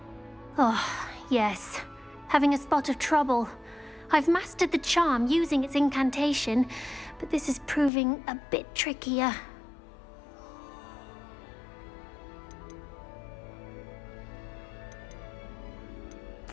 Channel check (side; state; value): right; drops out; at 7.9 s